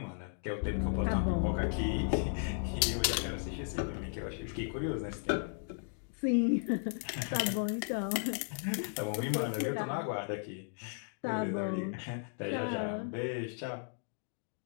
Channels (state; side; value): silent; right; 54 dB below the other